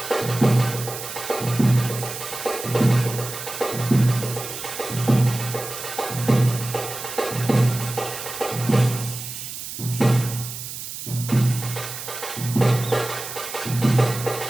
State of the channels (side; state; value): right; noise; hiss, 9 dB below the sound